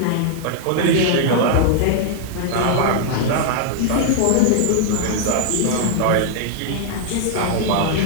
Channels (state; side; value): different; both; correlation 0.00